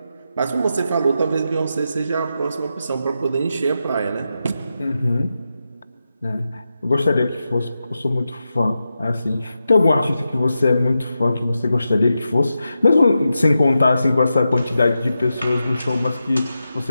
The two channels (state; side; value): inverted; both; correlation -0.89